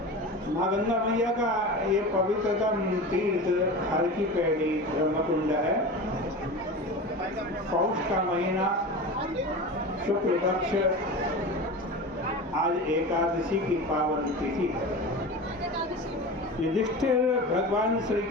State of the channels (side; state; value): both; normal; correlation 0.30